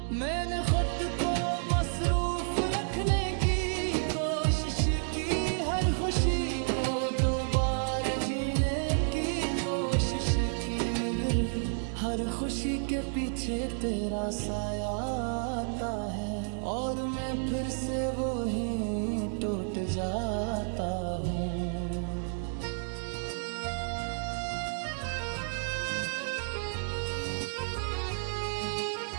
मैंने खुद को मसरूफ रखने की कोशिश की, हर खुशी को दो बार जीने की कोशिश की, मगर हर खुशी के पीछे तेरा साया आता है, और मैं फिर से वो ही टूट जाता हूँ।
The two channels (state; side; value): silent; left; digital silence